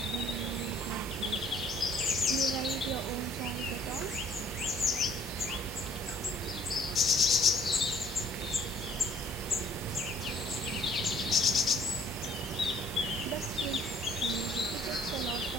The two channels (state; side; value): normal; both; correlation 0.58